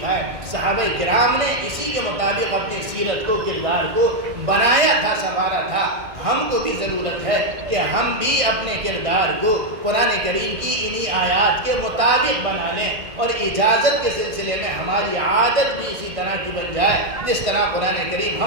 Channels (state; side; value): late; left; 1.5 ms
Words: صحابہ کرام نے اسی کے مطابق اپنی سیرت کو، کردار کو بنایا تھا، سنوارا تھا. ہم کو بھی ضرورت ہے کہ ہم بھی اپنے کردار کو قرآن کریم کی انہی آیات کے مطابق بنا لیں، اور اجازت کے سلسلے میں ہماری عادت بھی اسی طرح کی بن جائے جس طرح قرآن کریم